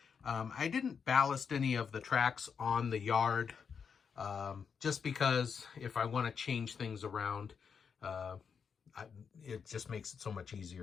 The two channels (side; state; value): right; quieter; 6.4 dB